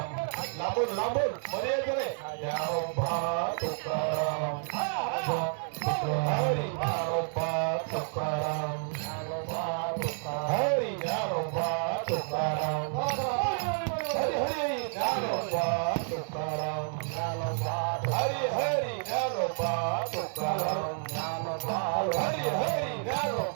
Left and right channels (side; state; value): left; silent; 58 dB below the other